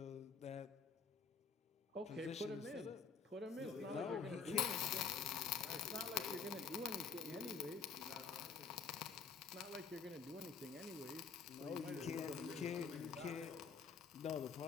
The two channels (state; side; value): quieter; right; 5.6 dB